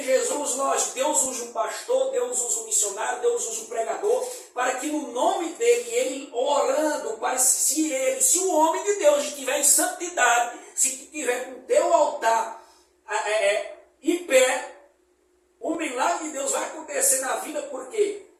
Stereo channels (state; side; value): identical; both; correlation 1.00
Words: Jesus, lógico, Deus usa um pastor, Deus usa um missionário, Deus usa um pregador, para que no nome dele, ele orando, para se o homem de Deus estiver em santidade, se estiver com o teu altar em pé, o milagre de Deus vai acontecer na vida porque